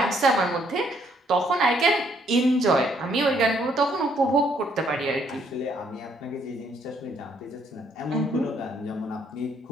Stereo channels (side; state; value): both; normal; correlation 0.68